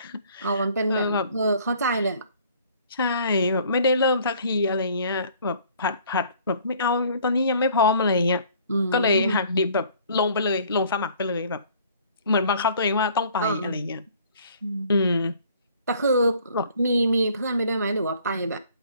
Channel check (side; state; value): both; inverted; correlation -0.56